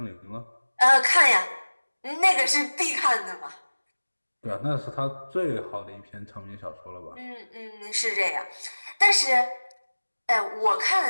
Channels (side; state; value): both; inverted; correlation -1.00